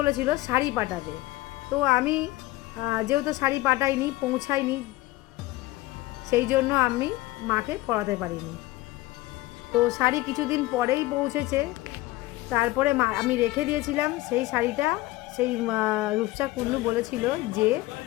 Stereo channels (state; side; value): quieter; right; 18.5 dB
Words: শাড়ি পাঠাবে। তো আমি যেহেতু শাড়ি পাঠাইনি, পৌঁছাইনি, সেই জন্য আমি মাকে পরাতে পারিনি। তো শাড়ি কিছুদিন পরেই পৌঁছেছে। তারপরে আমি রেখে দিয়েছিলাম সেই শাড়িটা। সেই রূপসা কুণ্ডু বলেছিল যে